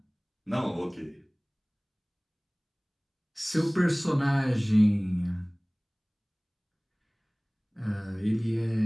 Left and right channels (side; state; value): both; identical; correlation 1.00